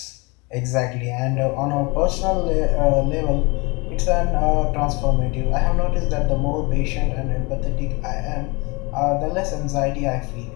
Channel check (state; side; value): quieter; right; 27.1 dB